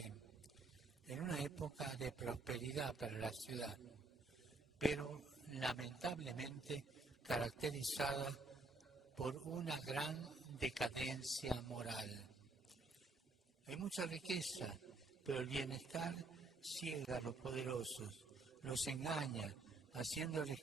en una época de prosperidad para la ciudad, pero lamentablemente caracterizada por una gran decadencia moral. Hay mucha riqueza, pero el bienestar ciega a los poderosos, los engaña, haciéndoles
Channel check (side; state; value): left; quieter; 3.3 dB